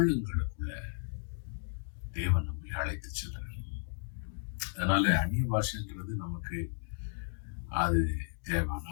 தேவன் நம்மை அழைத்து செல்றார். அதனால அந்நிய பாஷைங்கிறது நமக்கு அது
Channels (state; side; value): silent; right; digital silence